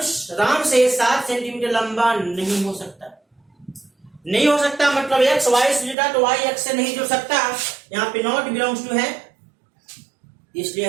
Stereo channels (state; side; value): drops out; left; at 6.0 s